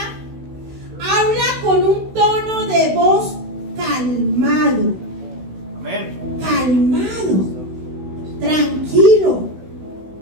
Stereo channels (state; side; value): late; left; 16 ms